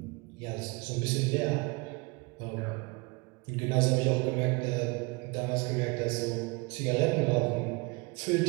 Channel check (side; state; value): left; quieter; 27.7 dB